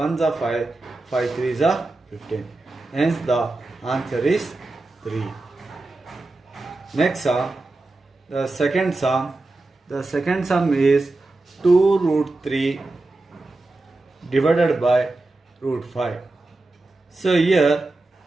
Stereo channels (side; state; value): left; quieter; 3.1 dB